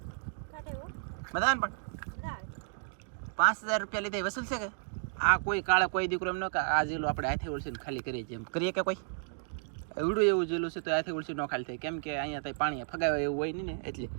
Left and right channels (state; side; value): silent; left; digital silence